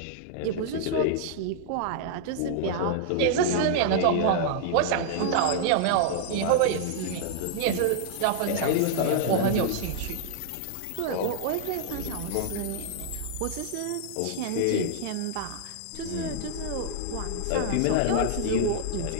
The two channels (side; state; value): both; different; correlation -0.01